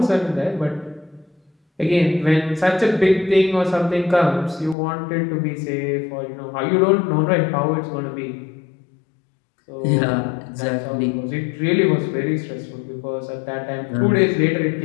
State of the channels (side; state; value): right; drops out; at 4.8 s